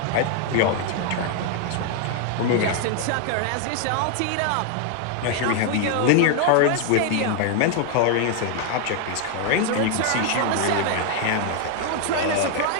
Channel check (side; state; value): both; different; correlation 0.00